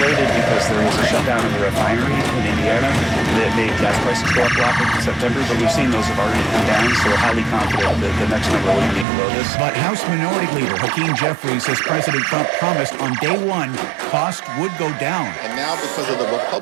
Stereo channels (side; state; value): left; drops out; at 9.1 s